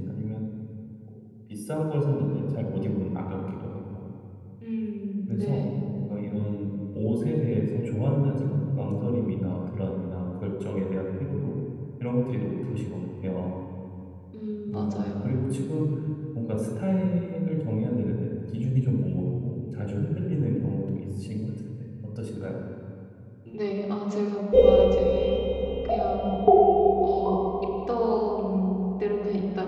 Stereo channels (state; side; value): identical; both; correlation 1.00